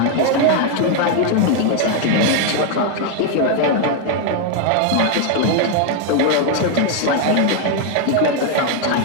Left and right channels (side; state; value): both; different; correlation 0.01